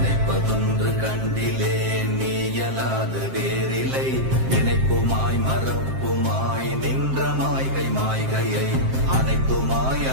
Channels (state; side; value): late; left; 7.6 ms